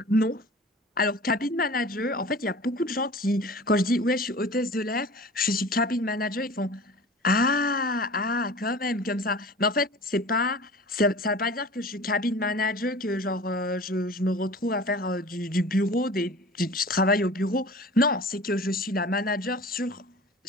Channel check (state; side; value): normal; both; correlation 0.40